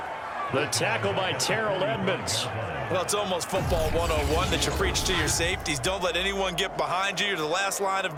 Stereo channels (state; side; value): identical; both; correlation 1.00